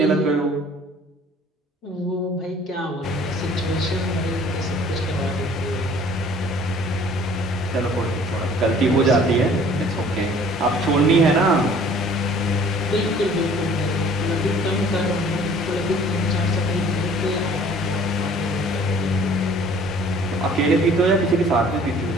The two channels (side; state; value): both; normal; correlation 0.52